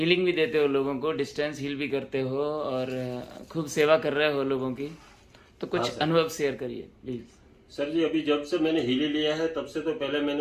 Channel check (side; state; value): both; identical; correlation 1.00